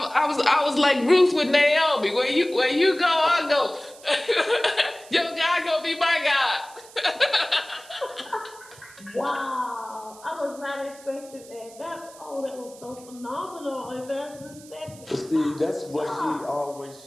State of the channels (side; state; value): right; noise; hiss, 21 dB below the sound